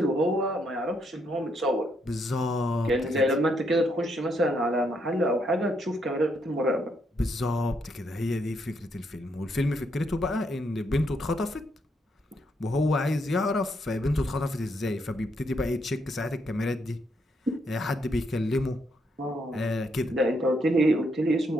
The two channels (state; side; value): normal; both; correlation 0.76